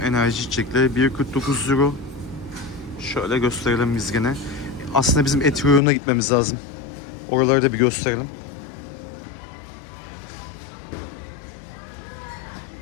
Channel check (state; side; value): drops out; right; at 5.8 s